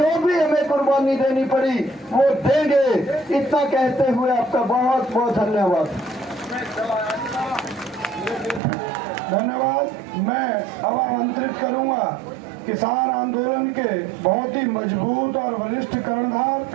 भी हमें कुर्बानी देनी पड़ी वो देंगे। इतना कहते हुए आपका बहुत बहुत धन्यवाद। धन्यवाद। मैं अब आमंत्रित करूंगा किसान आंदोलन के बहुत ही मजबूत और वरिष्ठ कर्णधार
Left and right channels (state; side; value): drops out; left; at 8.6 s